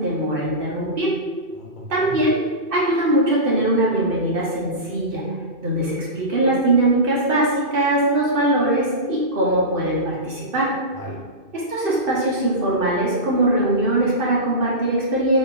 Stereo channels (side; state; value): left; late; 2.6 ms